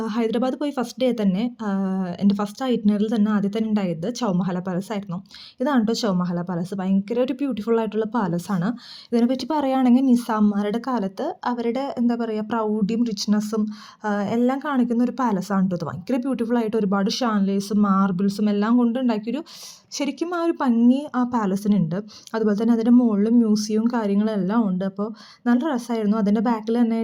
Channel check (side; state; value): both; identical; correlation 1.00